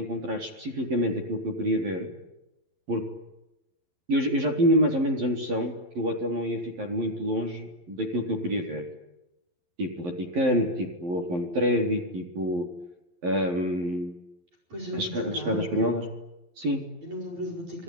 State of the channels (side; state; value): left; late; 12 ms